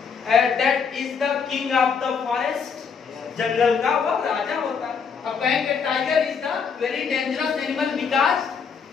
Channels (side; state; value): right; quieter; 6.1 dB